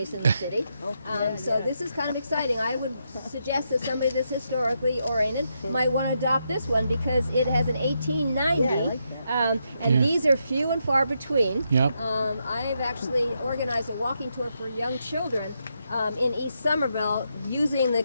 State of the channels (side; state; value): both; inverted; correlation -0.81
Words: in the city. So this is kind of exciting. I would suggest that somebody that's historically oriented might want to adopt this one because it has an 1890. These are few and far between. Yep. I have actually organized a walking tour for young children in East Somerville using the